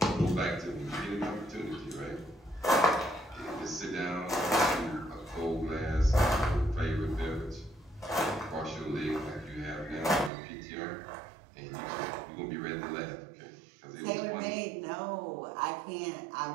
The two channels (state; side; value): drops out; left; at 10.3 s